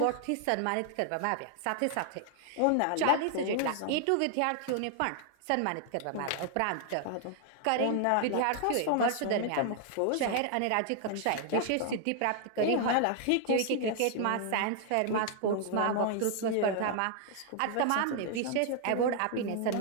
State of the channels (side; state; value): both; different; correlation 0.00